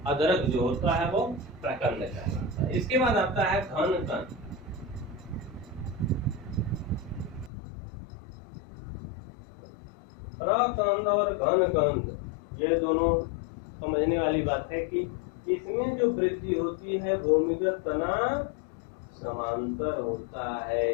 अदरक जो होता है वो प्रकंद कहलाता है। इसके बाद आता है घन कंद। प्रकंद और घन कंद ये दोनों समझने वाली बात है कि इसमें जो वृद्धि होती है भूमिगत तना समांतर होता है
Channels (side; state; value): right; drops out; at 7.5 s